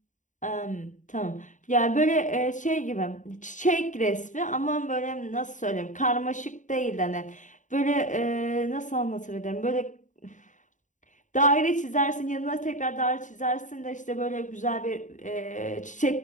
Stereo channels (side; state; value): right; late; 0.36 ms